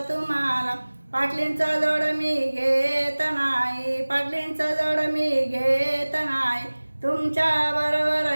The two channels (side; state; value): both; inverted; correlation -1.00